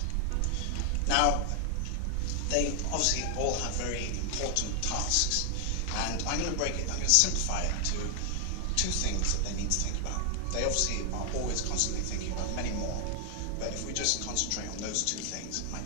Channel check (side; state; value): both; different; correlation 0.00